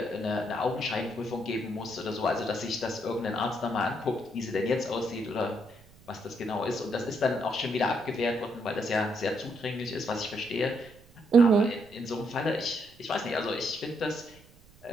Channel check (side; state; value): right; noise; rumble, 25 dB below the sound